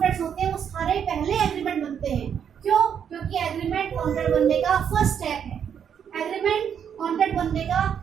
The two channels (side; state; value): left; quieter; 8.1 dB